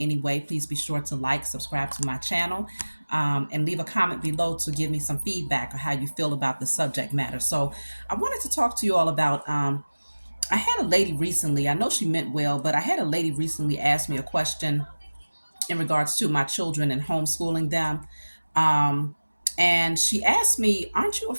way, please be sure to like, subscribe to my channel, and leave a comment below to give me some feedback on how you feel about the subject matter. So, I wanted to talk to you all about. I had a lady recently, I know she meant well, but I had a lady recently ask me a question in regards to my children and homeschooling them. Um, and she asked me, aren't you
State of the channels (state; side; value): inverted; both; correlation -1.00